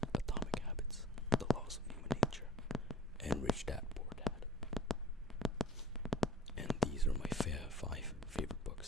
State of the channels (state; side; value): normal; both; correlation 0.49